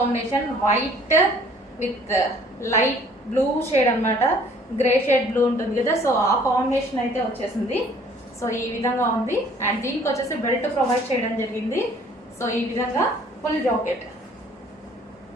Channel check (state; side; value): normal; both; correlation 0.56